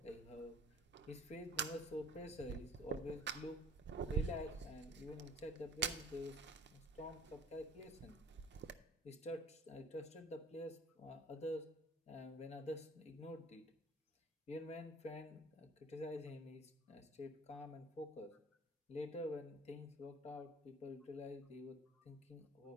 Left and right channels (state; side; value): normal; both; correlation 0.48